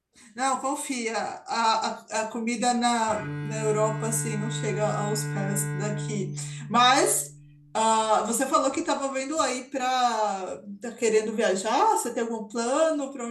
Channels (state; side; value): identical; both; correlation 1.00